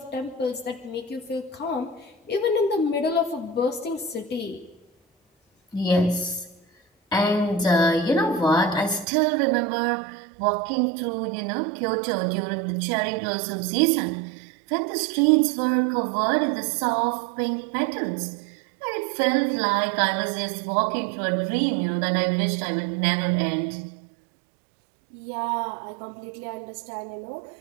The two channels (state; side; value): drops out; left; at 9.1 s